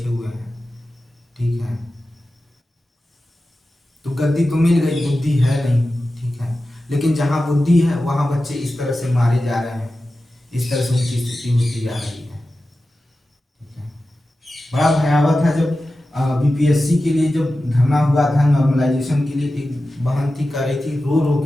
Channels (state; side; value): normal; both; correlation 0.94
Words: हुए हैं, ठीक है। तो गद्दी तो मिल गई, बुद्धि है नहीं, ठीक है। लेकिन जहाँ बुद्धि है वहाँ बच्चे इस तरह से मारे जा रहे हैं, इस तरह से उनकी स्थिति होती जा रही है, ठीक है। बड़ा भयावह था जब बीपीएससी के लिए जब धरना हुआ था नॉर्मलाइजेशन के लिए, एक बहन थी कह रही थी, रो रो